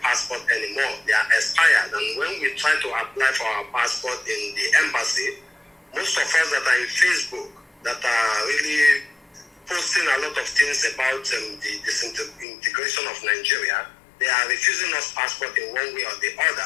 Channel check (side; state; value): right; drops out; at 12.5 s